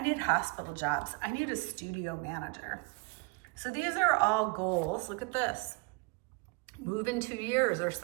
need hospital jobs. I need a studio manager. So these are all goals. Look at this. Move in 2 years or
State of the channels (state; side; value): quieter; left; 29.1 dB